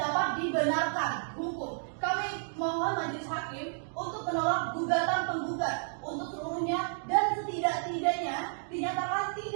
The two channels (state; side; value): silent; left; digital silence